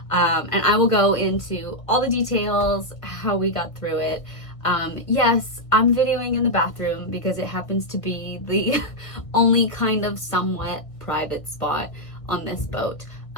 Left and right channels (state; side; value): late; right; 1.6 ms